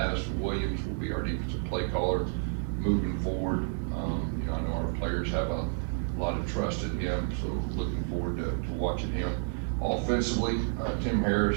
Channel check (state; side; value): silent; left; digital silence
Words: Williams will be our defensive play caller moving forward. I know our players have a lot of trust in him, so looking forward to watching him. Offensively, Tim